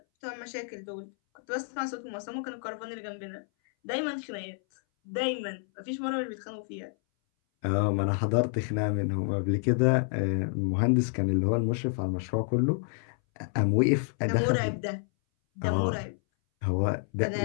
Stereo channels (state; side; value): silent; right; 58 dB below the other